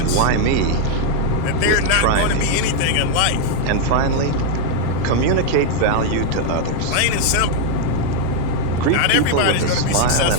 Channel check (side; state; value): both; different; correlation 0.01